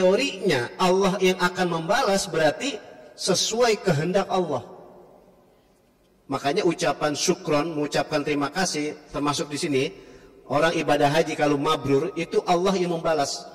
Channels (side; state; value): both; identical; correlation 1.00